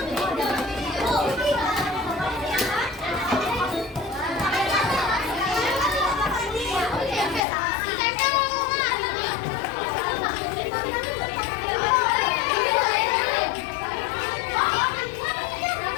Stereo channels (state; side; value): drops out; right; at 7.4 s